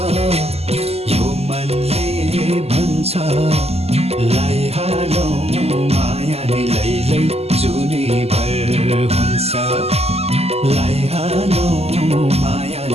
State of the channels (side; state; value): left; late; 0.29 ms